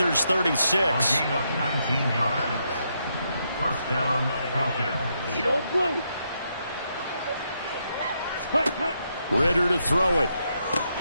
36. A gain of 19 yards. First down, Falcons. Eat old blue. Hut, hut. Ritter to throw it.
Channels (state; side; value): inverted; both; correlation -0.79